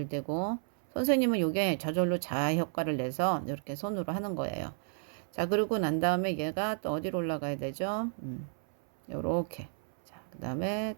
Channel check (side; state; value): left; silent; 56 dB below the other